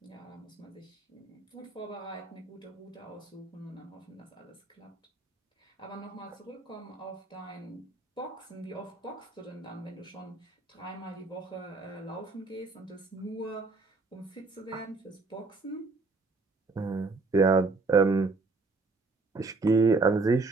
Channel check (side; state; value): left; quieter; 3.7 dB